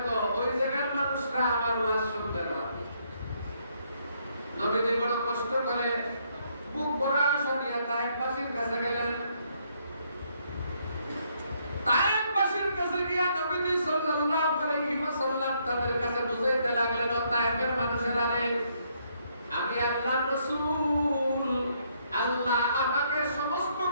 ওই জায়গার মানুষরা আমার ওয়াজ শুনতে না। নবীজি বড় কষ্ট করে বুক ভরা আশা নিয়ে তায়েফবাসীর কাছে গেলেন। তায়েফবাসীর কাছে গিয়া নবীজি সাল্লাল্লাহু আলাইহি ওয়াসাল্লাম তাদের কাছে বুঝাইতে লাগলেন, ও তায়েফের মানুষেরা রে, আমি আল্লাহর রাসূল, আল্লাহ আমাকে সমস্ত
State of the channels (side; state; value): both; inverted; correlation -0.72